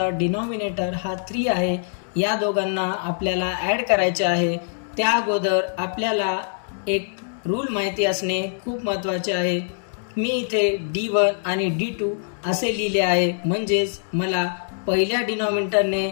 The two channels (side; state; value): right; silent; digital silence